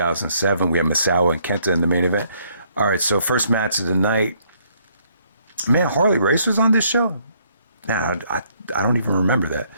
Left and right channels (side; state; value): both; inverted; correlation -0.67